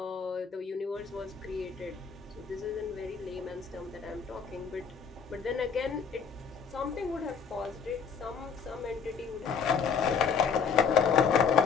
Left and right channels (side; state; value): right; quieter; 6.4 dB